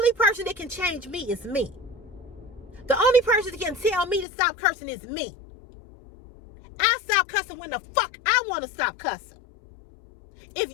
person that can change me is me. The only person that can tell me to stop cursing is me. I stop cussing when the fuck I want to stop cussing. If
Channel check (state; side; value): drops out; right; at 4.2 s